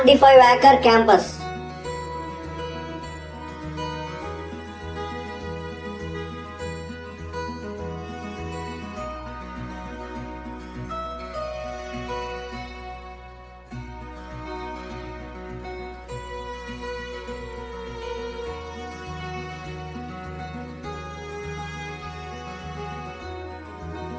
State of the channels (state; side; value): identical; both; correlation 1.00